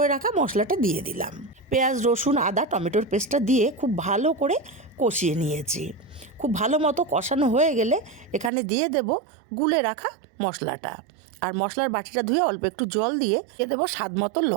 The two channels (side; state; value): left; drops out; at 8.5 s